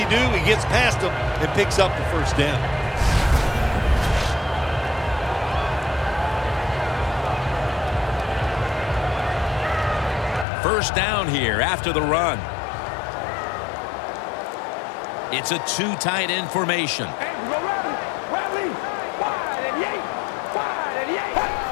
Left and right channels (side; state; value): right; drops out; at 10.5 s